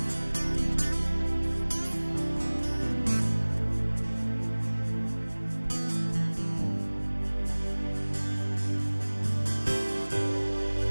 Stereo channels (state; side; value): inverted; both; correlation -1.00